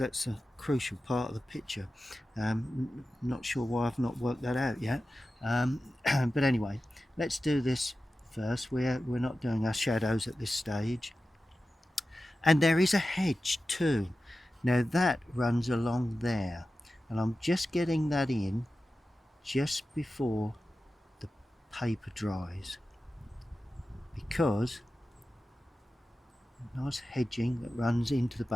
a crucial part of the picture. Not sure why I've not worked that out yet. But anyway, let's do this first. We're not doing our shadows at this stage. And there is a hedge too. Now that runs along there, and I'm just getting that in just before the paper dries, because nice hedging that runs into the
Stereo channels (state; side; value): normal; both; correlation 0.94